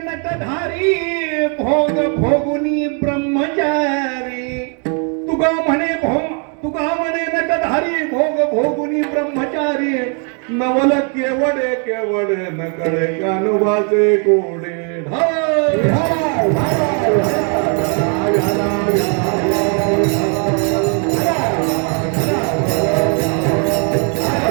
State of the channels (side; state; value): left; quieter; 40.0 dB